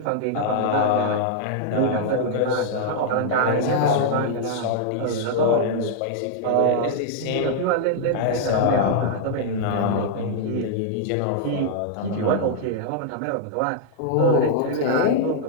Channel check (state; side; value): different; both; correlation -0.01